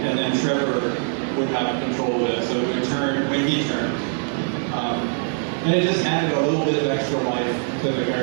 then Trevor would have control of it. So it would turn when he turned. And it just added a little bit of extra life to the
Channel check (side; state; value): left; silent; 56 dB below the other